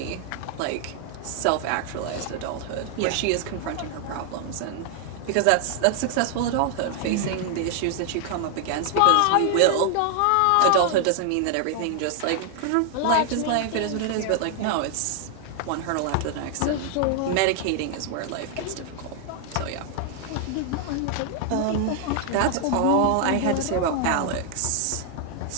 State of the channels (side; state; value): both; different; correlation 0.00